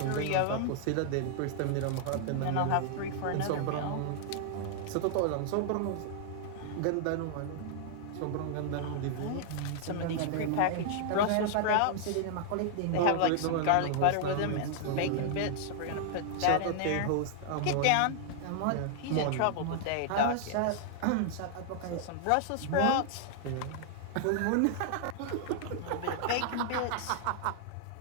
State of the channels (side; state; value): both; different; correlation -0.01